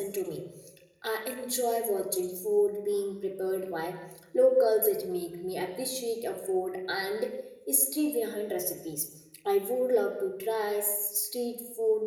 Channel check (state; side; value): identical; both; correlation 1.00